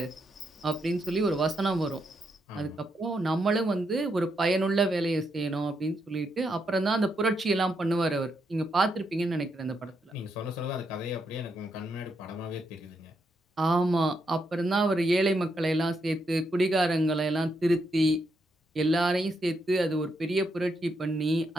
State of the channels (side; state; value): both; normal; correlation 0.80